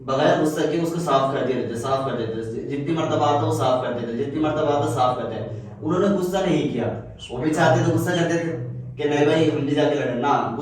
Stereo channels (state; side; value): identical; both; correlation 1.00